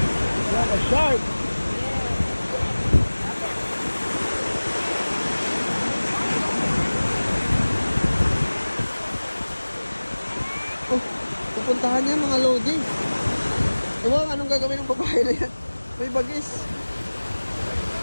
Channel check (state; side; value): inverted; both; correlation -1.00